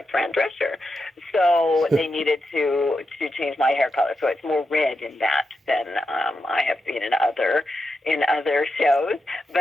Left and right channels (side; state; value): both; normal; correlation 0.87